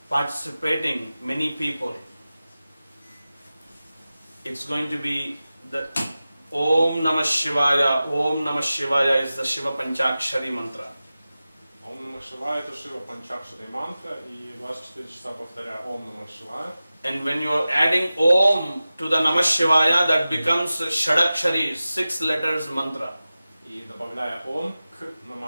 participating many people, it's going to be the Om Namah Shivaya. Om Namah Shivaya is the Shiva Panchakshari mantra. Ом Намах Шивая это Шива Панчакшари мантра, и 24 часа повторяя Ом Намах Шивая. And when you are adding Om to the Namah Shivaya, that becomes Shadakshari, 6 letters mantra. И добавляя Ом к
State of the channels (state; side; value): inverted; both; correlation -0.95